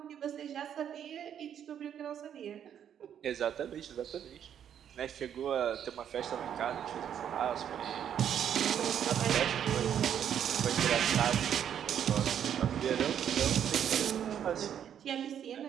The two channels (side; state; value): left; quieter; 9.2 dB